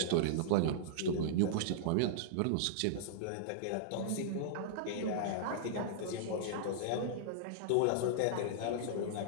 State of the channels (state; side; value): different; both; correlation -0.02